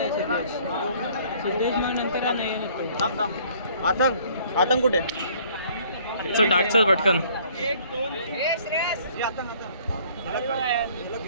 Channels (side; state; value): both; inverted; correlation -0.57